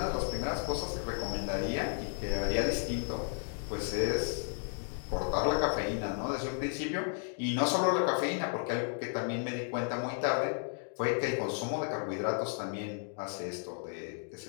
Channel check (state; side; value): silent; right; 55 dB below the other